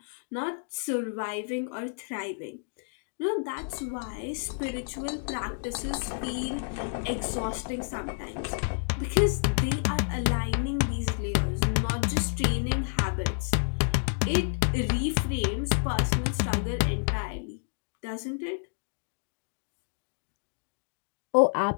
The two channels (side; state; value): right; silent; digital silence